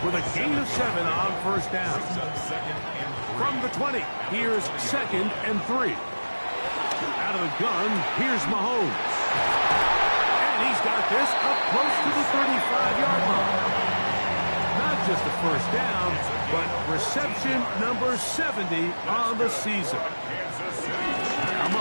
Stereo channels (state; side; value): inverted; both; correlation -1.00